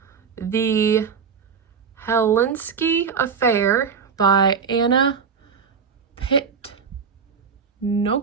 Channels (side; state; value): left; quieter; 6.1 dB